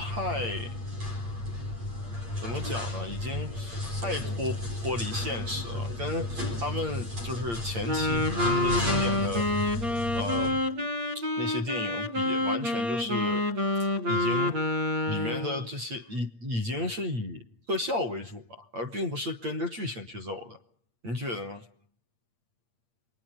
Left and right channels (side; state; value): left; late; 8.6 ms